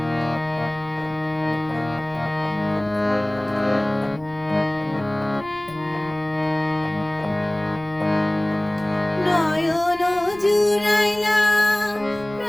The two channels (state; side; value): noise; left; rumble, 23 dB below the sound